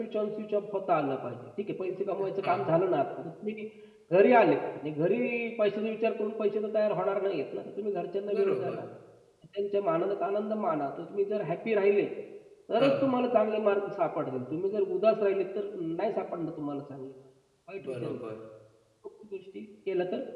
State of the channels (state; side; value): identical; both; correlation 1.00